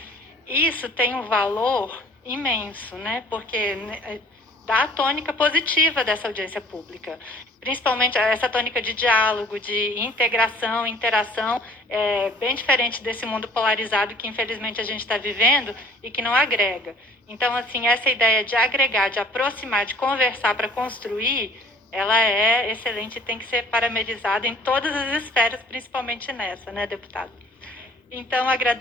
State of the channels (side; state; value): both; normal; correlation 0.54